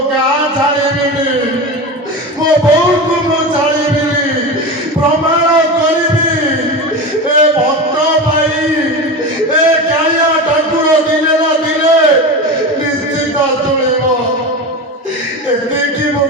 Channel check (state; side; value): normal; both; correlation 0.25